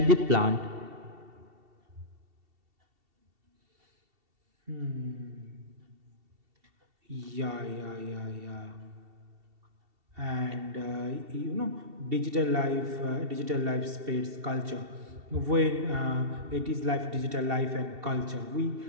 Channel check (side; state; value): left; late; 2.7 ms